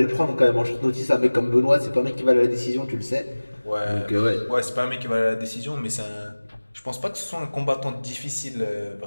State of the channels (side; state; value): both; inverted; correlation -1.00